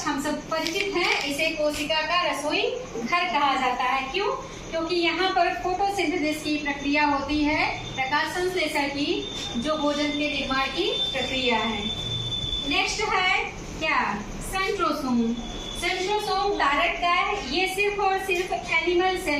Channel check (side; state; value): both; identical; correlation 1.00